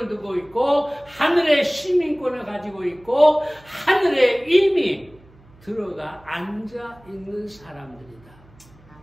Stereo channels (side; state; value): right; noise; hum, 27 dB below the sound